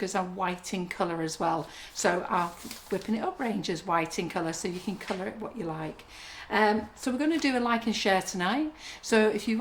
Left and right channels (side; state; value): both; identical; correlation 1.00